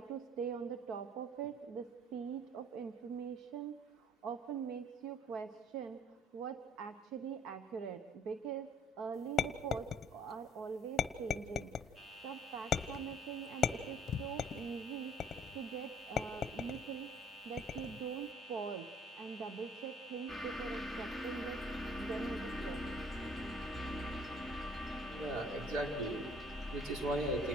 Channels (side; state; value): both; normal; correlation 0.57